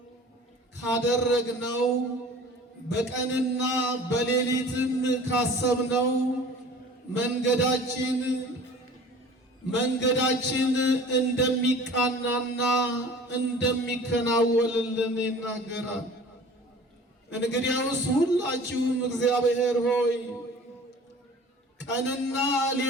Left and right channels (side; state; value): both; normal; correlation 0.44